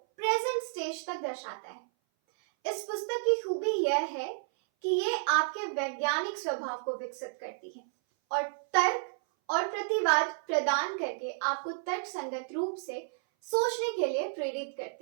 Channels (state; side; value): silent; left; 57 dB below the other